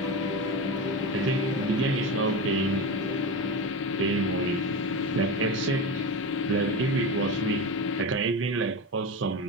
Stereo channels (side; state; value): both; normal; correlation 0.22